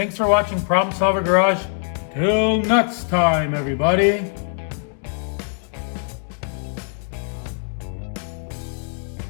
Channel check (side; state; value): right; silent; 55 dB below the other